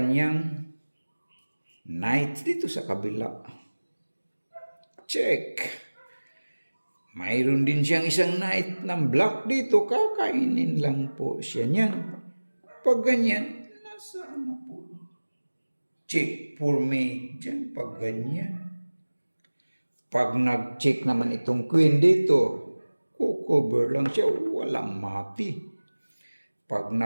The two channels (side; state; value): both; inverted; correlation -1.00